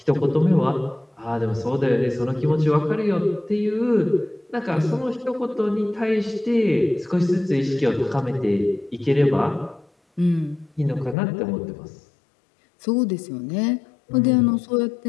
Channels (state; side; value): drops out; right; at 11.2 s